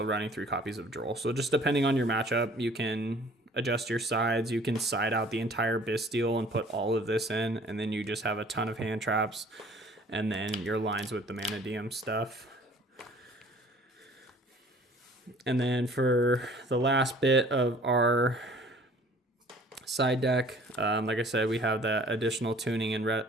running 3 copies of Droll. So just depending on your matchup, you can adjust your sides. You can side out the entire bystial and put all of this in, and then you just have a ton of hand traps, and then your lines with the Mannadium stuff. And then for the last bit of our side deck, like I said, we have that additional tuning and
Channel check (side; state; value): both; normal; correlation 0.52